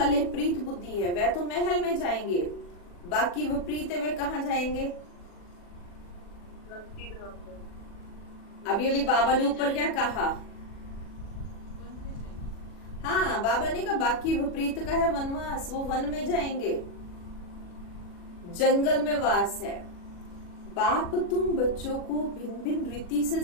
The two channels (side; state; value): right; late; 40 ms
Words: प्रीत बुद्धि है वह तो महल में जाएंगे, बाकी विपरीत है वे कहा जाएंगे? अभी अभी बाबा ने ऊपर क्या कहा? हाँ, बाबा ने कहा बाकी विपरीत का है वनवास, वो वन में जाएंगे, जंगल में वास है। बाप तुम बच्चों को भिन्न भिन्न रीति से